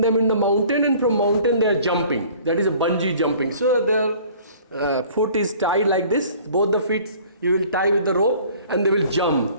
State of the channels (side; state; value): both; inverted; correlation -0.51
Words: in the mountain, and from mountain they are jumping. That is a bungee jumping. So their foot is tied like this. Both the feet you will tie with the rope, and they will